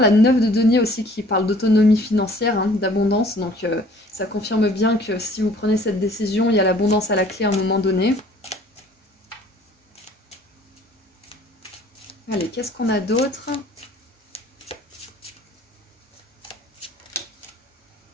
9 de denier aussi qui parle d'autonomie financière, hein, d'abondance. Donc ça confirme bien que si vous prenez cette décision, il y a l'abondance à la clé à un moment donné. Allez, qu'est-ce qu'on a d'autre?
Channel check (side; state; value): both; normal; correlation 0.54